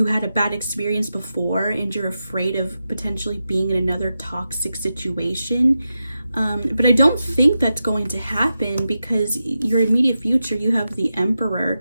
had a bad experience before and you're afraid of potentially being in another toxic situation. But I don't think that's going to happen, because your immediate future, you have the Emperor.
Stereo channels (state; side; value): inverted; both; correlation -0.90